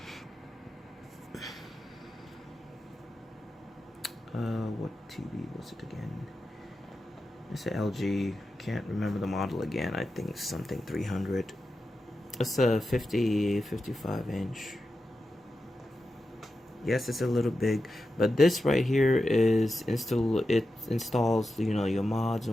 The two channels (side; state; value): both; normal; correlation 0.90